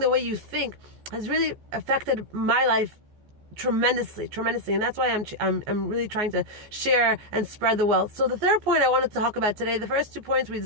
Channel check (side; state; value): left; late; 14 ms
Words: way you think has really affected my life tremendously, and that's why I'm really trying to share and spread the wealth. So the third point I wanted to talk about today, the first 2 points we